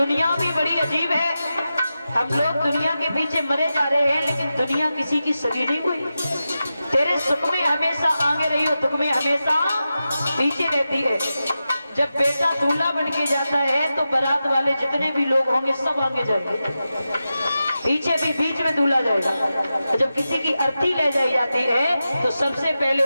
भी बड़ी अजीब है। हम लोग दुनिया के पीछे मरे जा रहे हैं, लेकिन दुनिया किसी की सगी नहीं हुई। तेरे सुख में हमेशा आगे रही हो, दुख में हमेशा पीछे रहती है। जब बेटा दूल्हा बन के जाता है तो बारात वाले जितने भी लोग होंगे सब आगे जाएंगे, पीछे भी बीच में दूल्हा जाएगा। जब किसी की अर्थी ले जाई जाती है तो सबसे पहले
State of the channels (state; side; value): inverted; both; correlation -0.91